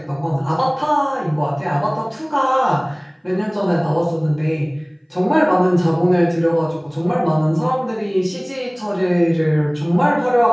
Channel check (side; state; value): both; identical; correlation 1.00